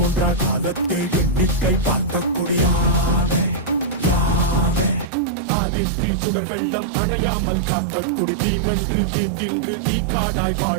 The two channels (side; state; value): left; drops out; at 5.1 s